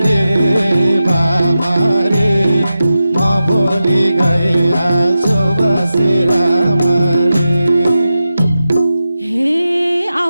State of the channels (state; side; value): inverted; both; correlation -0.91